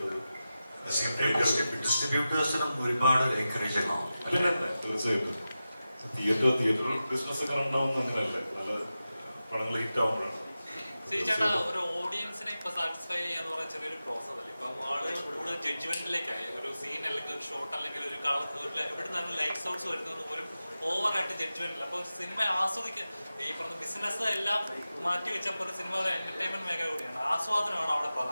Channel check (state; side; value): inverted; both; correlation -0.93